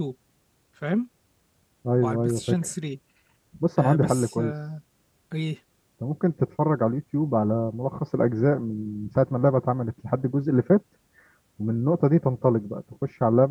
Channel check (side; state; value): both; identical; correlation 1.00